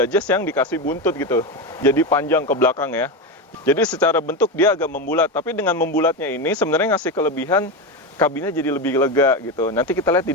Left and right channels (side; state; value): both; normal; correlation 0.15